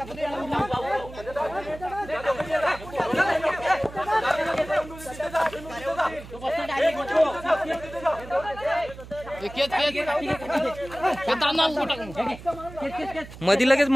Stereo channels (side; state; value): right; noise; hum, 15 dB below the sound